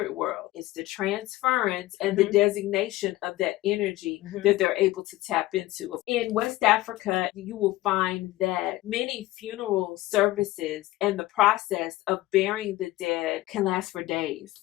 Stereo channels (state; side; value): quieter; right; 17.4 dB